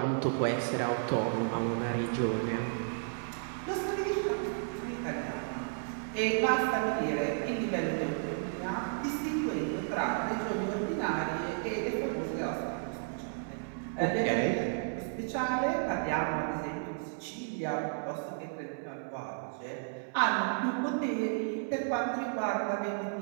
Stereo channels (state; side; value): silent; left; 56 dB below the other